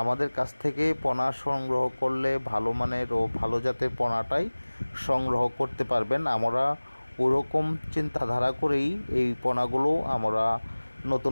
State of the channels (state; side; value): inverted; both; correlation -1.00